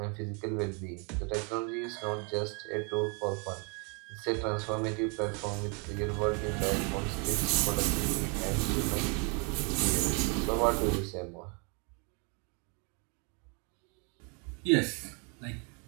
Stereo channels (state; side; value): quieter; left; 34.9 dB